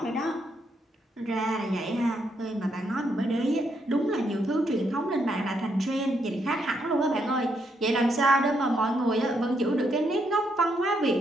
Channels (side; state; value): both; normal; correlation 0.77